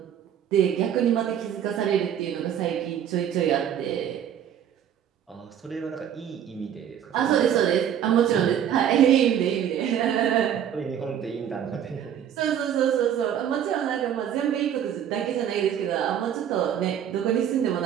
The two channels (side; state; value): left; quieter; 9.5 dB